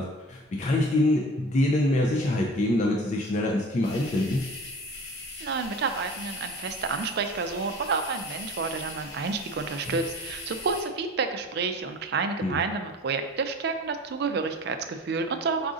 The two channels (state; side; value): normal; both; correlation 0.38